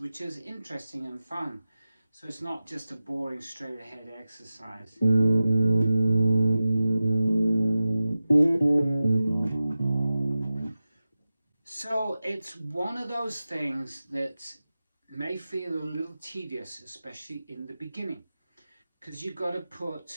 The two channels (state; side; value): inverted; both; correlation -0.95